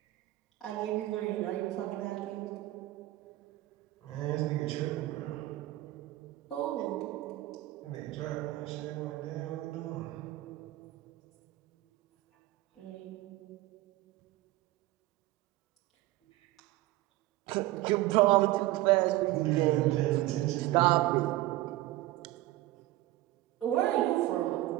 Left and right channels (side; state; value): left; quieter; 17.0 dB